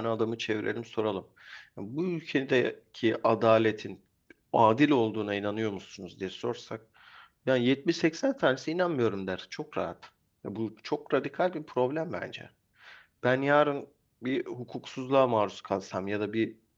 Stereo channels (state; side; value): identical; both; correlation 1.00